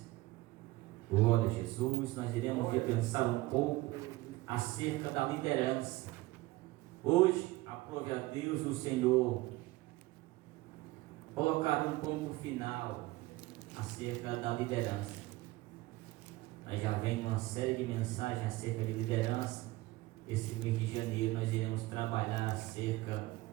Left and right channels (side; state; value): left; quieter; 19.7 dB